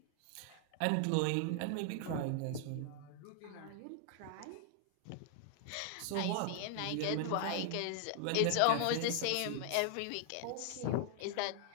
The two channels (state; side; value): different; both; correlation 0.00